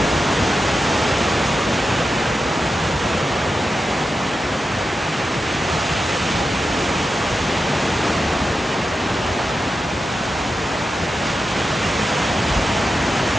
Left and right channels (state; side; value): normal; both; correlation 0.90